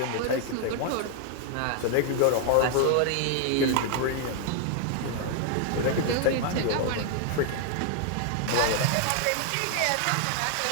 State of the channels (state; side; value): different; both; correlation 0.00